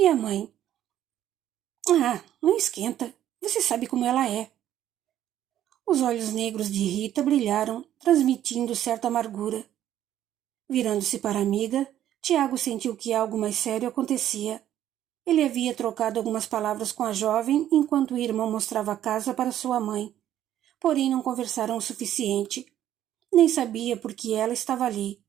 a mãe? Ah, não esquenta. Você sabe como ela é. Os olhos negros de Rita brilharam, transmitindo certa amargura. Virando-se para a amiga, Tiago sentiu que algo mais sério acontecia. Ele havia trocado algumas palavras com a jovem enquanto o irmão mostrava a casa para sua mãe. Porém não conversaram o suficiente. Nem sabia por que ela estava ali.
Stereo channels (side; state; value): left; quieter; 11.6 dB